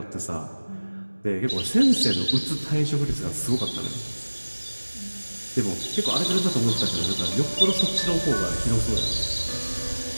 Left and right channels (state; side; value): inverted; both; correlation -1.00